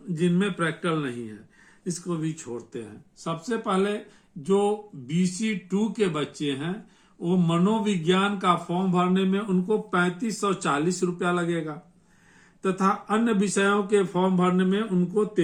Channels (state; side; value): identical; both; correlation 1.00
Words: जिनमें प्रैक्टिकल नहीं है, इसको भी छोड़ते हैं। सबसे पहले जो BC2 के बच्चे हैं वो मनोविज्ञान का फॉर्म भरने में उनको 3540 रुपया लगेगा, तथा अन्य विषयों के फॉर्म भरने में उनको